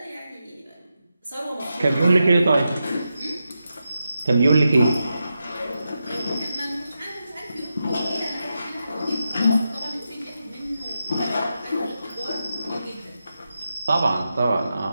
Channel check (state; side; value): inverted; both; correlation -0.88